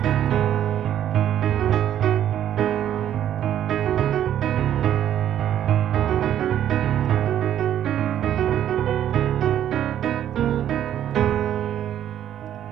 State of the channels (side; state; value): left; quieter; 10.8 dB